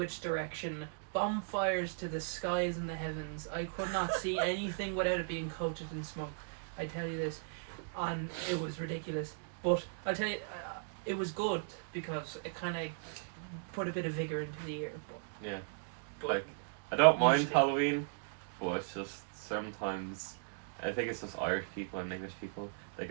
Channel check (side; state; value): left; silent; digital silence